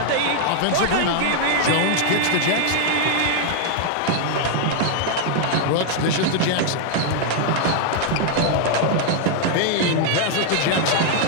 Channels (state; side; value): different; both; correlation 0.00